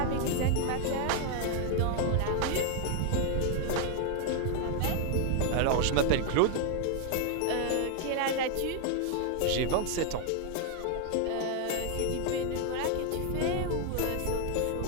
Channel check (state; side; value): different; both; correlation 0.00